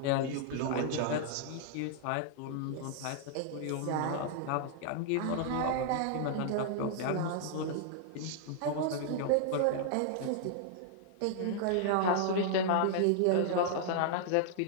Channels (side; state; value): both; different; correlation -0.01